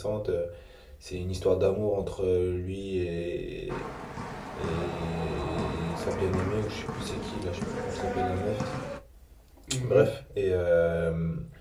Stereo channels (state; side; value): identical; both; correlation 1.00